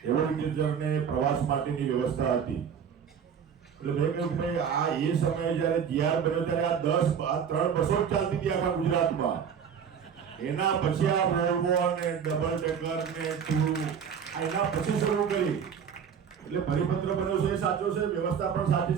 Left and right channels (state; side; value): quieter; left; 7.5 dB